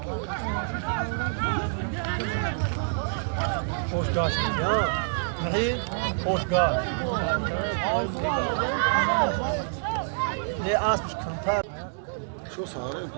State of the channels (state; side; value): silent; left; digital silence